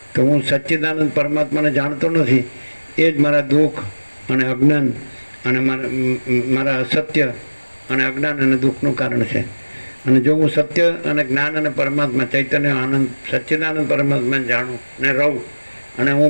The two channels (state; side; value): inverted; both; correlation -1.00